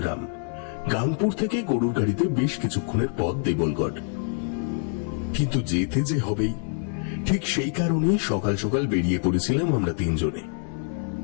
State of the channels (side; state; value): right; silent; 58 dB below the other